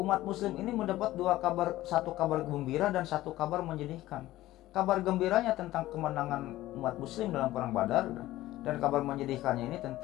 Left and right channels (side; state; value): right; quieter; 15.9 dB